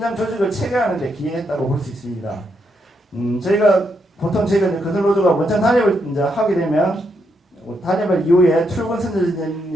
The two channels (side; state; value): both; normal; correlation 0.79